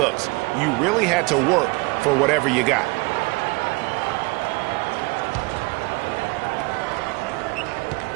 You really had to work for whatever you got.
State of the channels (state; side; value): quieter; left; 26.7 dB